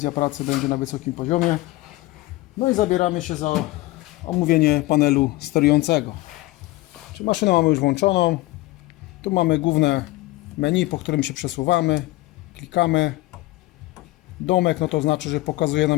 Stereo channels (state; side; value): quieter; right; 19.0 dB